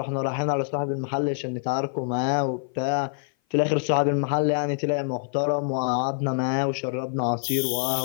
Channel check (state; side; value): silent; right; 56 dB below the other